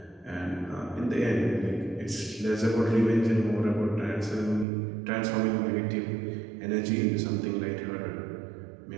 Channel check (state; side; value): drops out; left; at 4.7 s